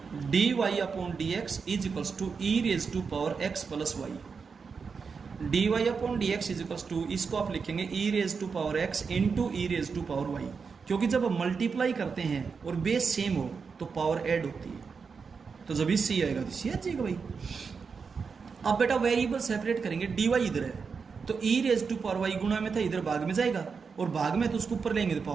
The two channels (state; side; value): quieter; left; 5.4 dB